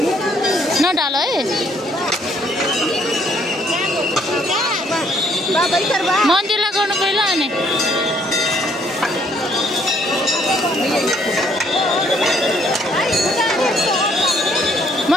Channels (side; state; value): both; normal; correlation 0.66